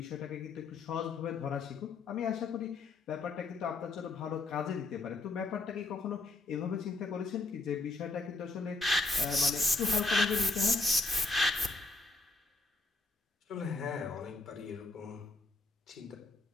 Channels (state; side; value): quieter; right; 3.3 dB